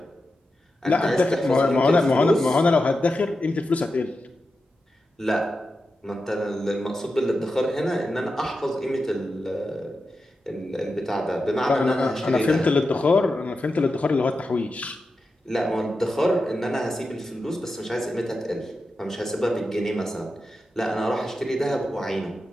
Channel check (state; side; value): normal; both; correlation 0.90